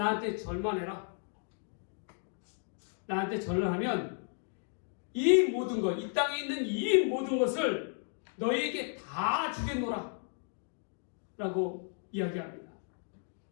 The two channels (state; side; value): silent; right; 55 dB below the other